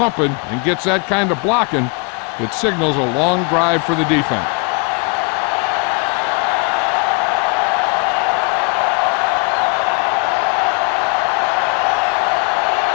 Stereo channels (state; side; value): quieter; right; 34.5 dB